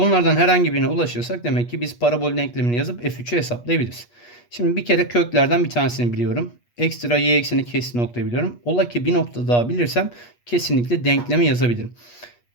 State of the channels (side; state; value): right; late; 8.4 ms